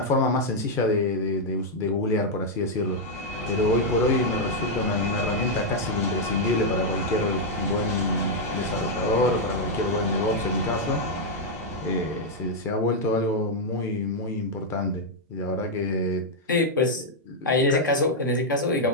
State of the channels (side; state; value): both; normal; correlation -0.02